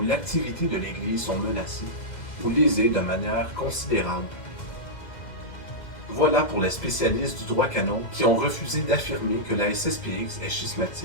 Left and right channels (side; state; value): right; late; 2.0 ms